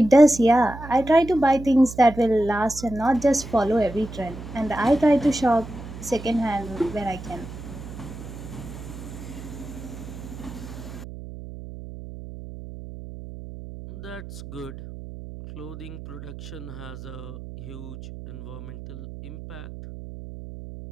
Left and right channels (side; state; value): right; noise; hum, 12 dB below the sound